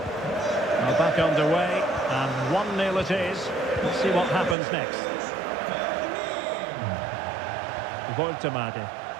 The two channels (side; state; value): left; drops out; at 4.5 s